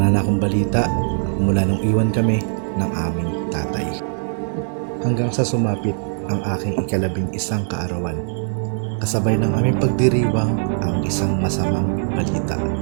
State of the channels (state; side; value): silent; left; 65 dB below the other